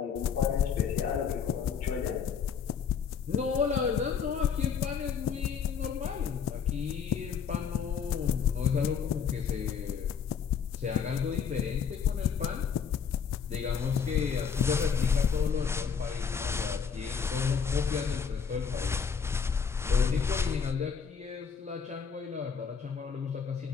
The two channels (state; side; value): quieter; right; 6.7 dB